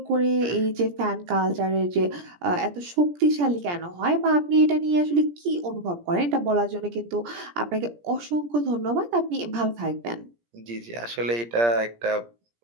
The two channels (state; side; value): late; left; 17 ms